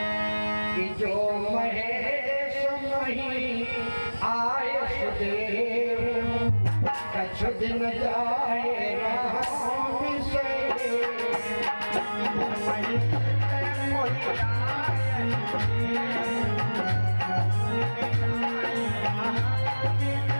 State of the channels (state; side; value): inverted; both; correlation -1.00